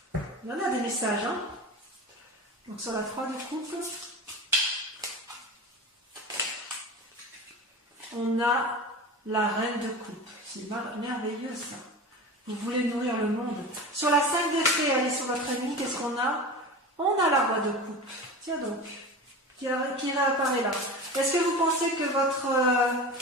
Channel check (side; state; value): both; normal; correlation 0.31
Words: Il y en a des messages, hein. Donc sur la 3 de coupe, on a la reine de coupe. C'est merveilleux ça. Vous voulez nourrir le monde. Sur la 5 d'épée, allez sur votre ennemi, qu'est-ce qu'on a? On a la roi de coupe. Tiens donc, qui réapparaît là. Est-ce que vous pensez que votre